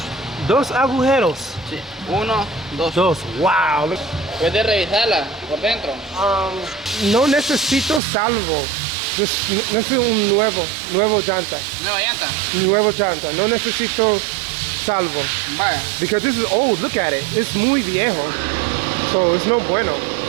Dos agujeros. Sí, 1, 2. Wow. ¿Puedes revisarla por dentro? No necesito salvo. Necesito un nuevo llanta. ¿Nueva llanta? Nuevo llanta. No necesito salvo. Vaya. Because this is old. Look at it. It's muy viejo. So it's no bueno.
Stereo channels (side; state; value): left; drops out; at 8.0 s